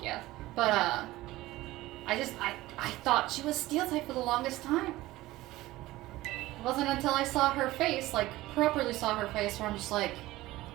But I thought she was steel type for the longest time. It wasn't until I saw her face, like properly saw her face, where I'm just like,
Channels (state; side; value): quieter; left; 17.6 dB